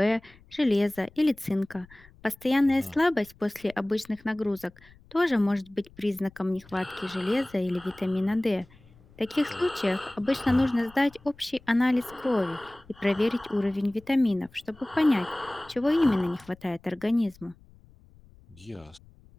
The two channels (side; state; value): left; noise; rumble, 26 dB below the sound